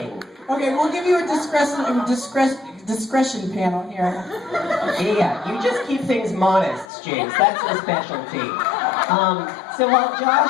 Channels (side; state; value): right; drops out; at 6.9 s